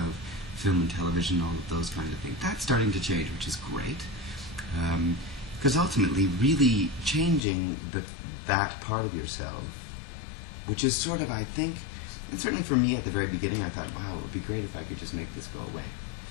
film and television, all of those kind of things. That's starting to change, which is great. Because ultimately, really changing that part of yourself, which is sort of, I think, and certainly for me at the very beginning, I thought, wow, it would be great if I could just make this go away.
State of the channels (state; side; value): drops out; right; at 7.4 s